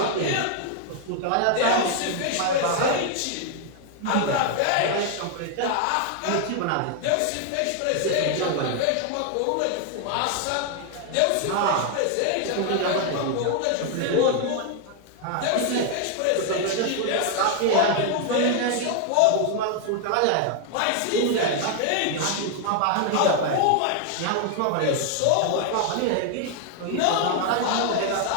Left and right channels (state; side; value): different; both; correlation 0.00